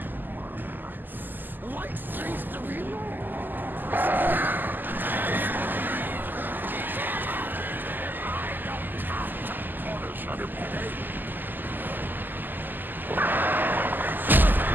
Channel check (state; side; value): late; left; 0.089 ms